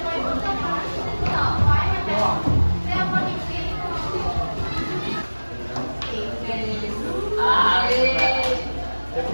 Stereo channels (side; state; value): both; inverted; correlation -1.00